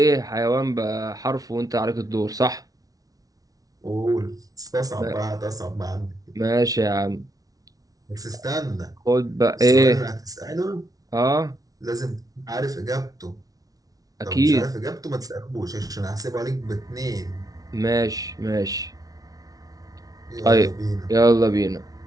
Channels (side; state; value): left; late; 0.18 ms